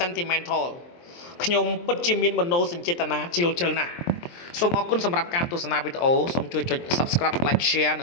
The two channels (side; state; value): right; late; 23 ms